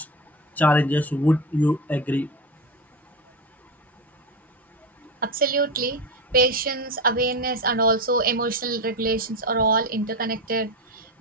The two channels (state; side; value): normal; both; correlation 0.19